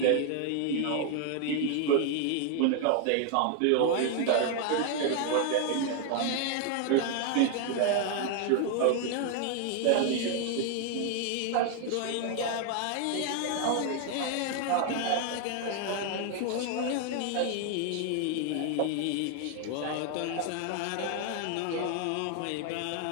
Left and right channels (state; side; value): different; both; correlation 0.00